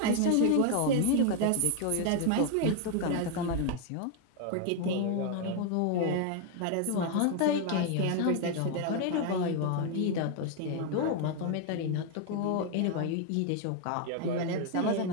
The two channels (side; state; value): both; different; correlation 0.01